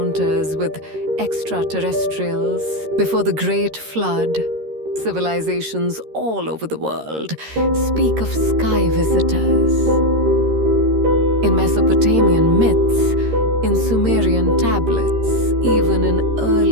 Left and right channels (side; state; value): left; late; 13 ms